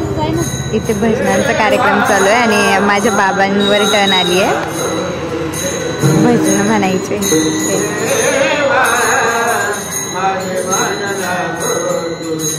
इथे भजनांचा कार्यक्रम चालू आहे आणि माझ्या बाबांवर टर्न आली आहे भजन म्हणायचे।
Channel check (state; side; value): identical; both; correlation 1.00